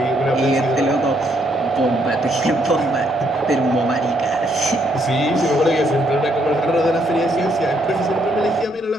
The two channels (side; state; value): both; normal; correlation 0.72